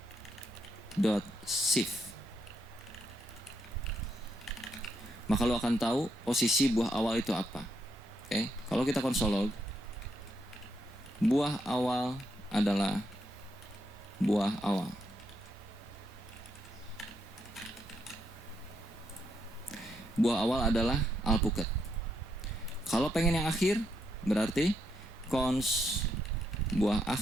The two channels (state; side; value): normal; both; correlation 0.78